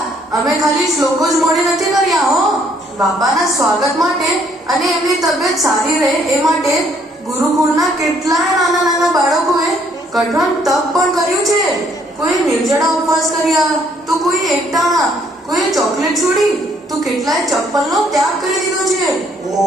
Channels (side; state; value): both; normal; correlation 0.66